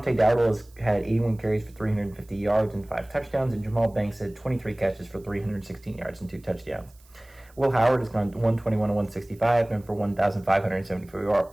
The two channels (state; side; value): noise; right; hiss, 29 dB below the sound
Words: Dowdle has had 81 carries for 350 yards and 5 touchdowns, and Jamal Banks had 23 catches for 316 yards and 2 touchdowns. Will Howard has gone 121-165, and for